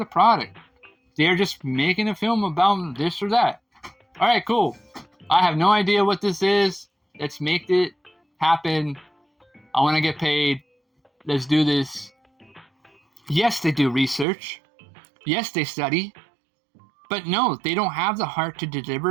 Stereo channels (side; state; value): left; drops out; at 14.2 s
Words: product. They're just making a film about this or that. All right, cool. I have no idea what this is. Let's make it happen. I want to get paid. Let's do this. Yes, they do research. Yes, they study. But no, they don't have the heart to